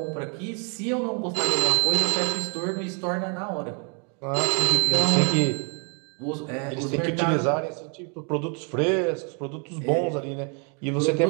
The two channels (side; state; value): left; quieter; 37.4 dB